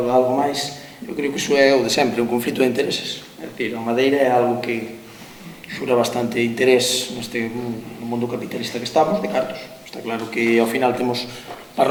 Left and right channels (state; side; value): identical; both; correlation 1.00